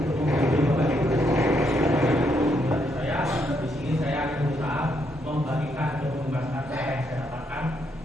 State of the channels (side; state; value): both; normal; correlation 0.76